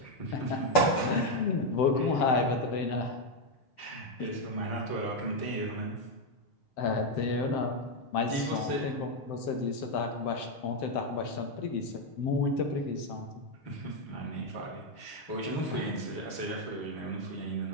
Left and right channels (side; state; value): right; late; 7.7 ms